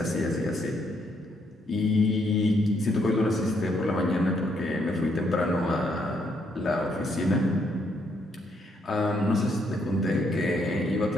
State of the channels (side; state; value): both; normal; correlation 0.73